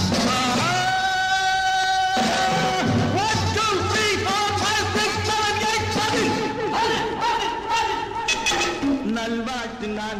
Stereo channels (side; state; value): both; identical; correlation 1.00